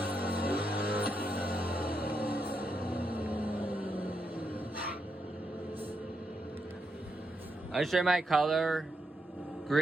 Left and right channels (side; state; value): both; normal; correlation 0.83